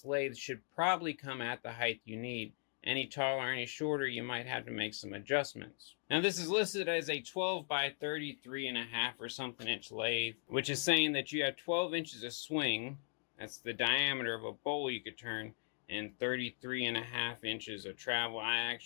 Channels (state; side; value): silent; right; 52 dB below the other